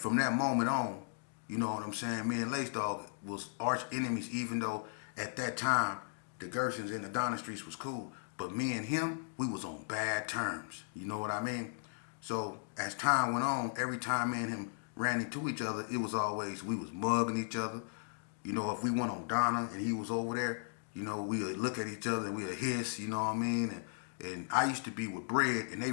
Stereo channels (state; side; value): silent; right; digital silence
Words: that moment on, you know what I'm saying, me and Lace Dog was arch enemies, even though at that time the Gersons and the Donna Streets was cool. But me and him, we was on bad terms. You know what I mean? So as time went on, every time me and him ran into each other, it was always, we was mugging each other. If we went on Donna and he was over there, we would look at each other and we would hiss, you know what I mean? And I used to be with Bread, and they